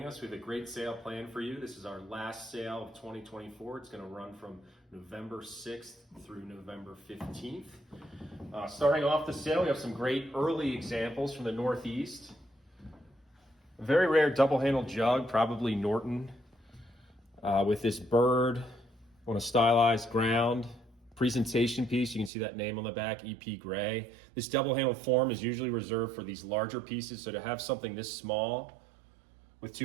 us. We have a great sale planned for you. This is our last sale of 2024. It's going to run from November 6th through November 15th. Starting off the sale, we have some great early examples from the Northeast. A very rare double-handled jug, probably Norton, with this bird on a stylized ground. Presentation piece, you can see that name on the back, EP Gray. This double-handled form is usually reserved for these larger pieces, so to have something this small with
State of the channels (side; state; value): left; drops out; at 22.3 s